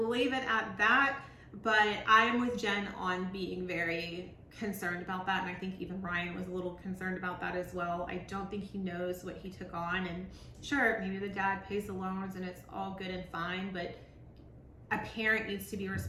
leave it at that, but I am with Jen on being very concerned about that, and I think even Ryan was a little concerned about that as well. I don't think he knows what he took on, and sure, maybe the dad pays the loans and it's all good and fine, but a parent needs to be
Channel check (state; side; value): identical; both; correlation 1.00